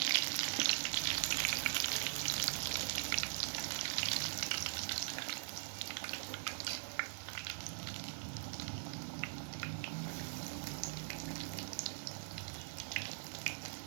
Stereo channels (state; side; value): silent; left; digital silence